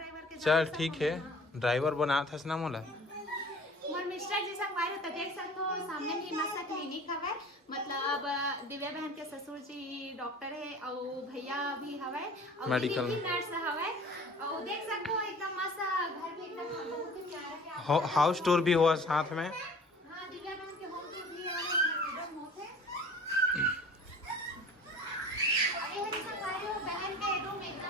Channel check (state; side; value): normal; both; correlation 0.45